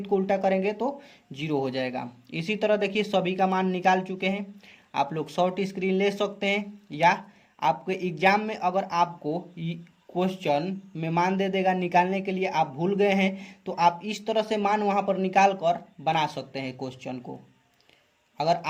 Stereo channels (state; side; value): identical; both; correlation 1.00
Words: को उल्टा करेंगे तो 0 हो जाएगा। इसी तरह देखिए सभी का मान निकाल चुके हैं। आप लोग शॉर्ट स्क्रीन ले सकते हैं, या आपके एग्जाम में अगर आपको क्वेश्चन में मान दे देगा निकालने के लिए, आप भूल गए हैं तो आप इस तरह से मान वहाँ पर निकाल कर बना सकते हैं क्वेश्चन को। अगर